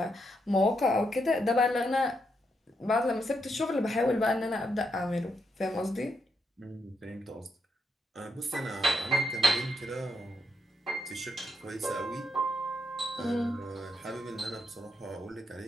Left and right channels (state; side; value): normal; both; correlation 0.80